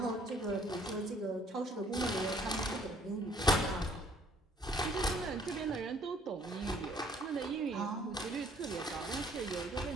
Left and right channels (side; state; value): both; normal; correlation 0.60